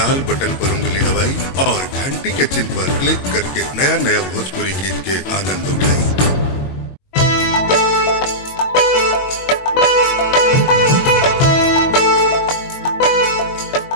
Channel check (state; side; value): late; right; 22 ms